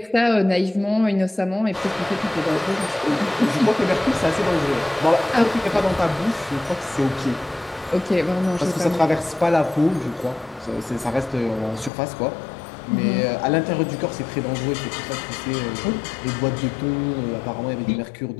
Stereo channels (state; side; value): drops out; right; at 11.9 s